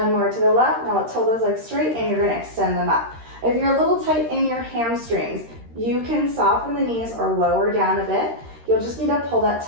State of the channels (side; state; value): left; late; 13 ms